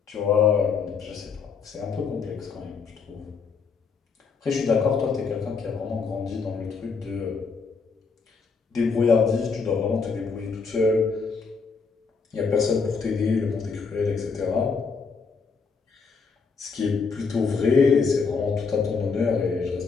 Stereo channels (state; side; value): quieter; right; 5.2 dB